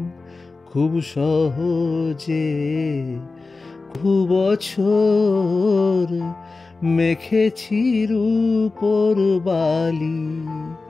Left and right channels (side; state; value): right; quieter; 3.7 dB